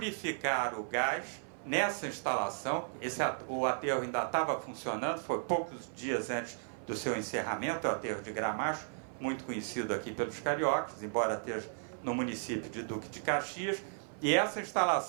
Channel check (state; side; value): silent; left; 54 dB below the other